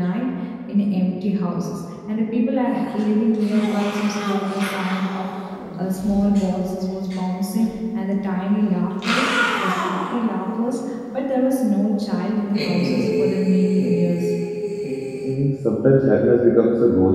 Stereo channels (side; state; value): both; identical; correlation 1.00